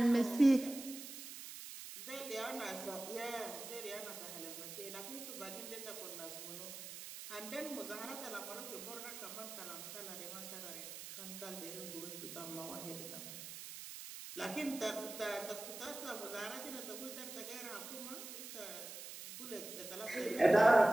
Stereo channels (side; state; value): right; noise; hiss, 10 dB below the sound